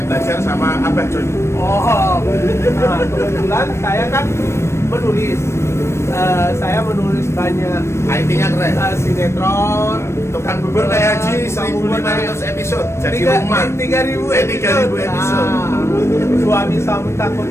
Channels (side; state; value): right; late; 0.13 ms